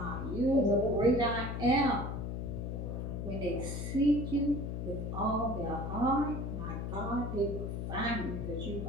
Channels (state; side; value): noise; left; hum, 3 dB below the sound